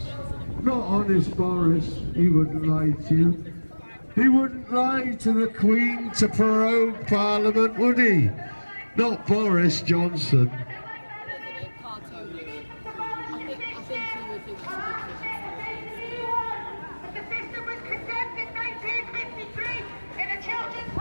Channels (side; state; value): both; inverted; correlation -1.00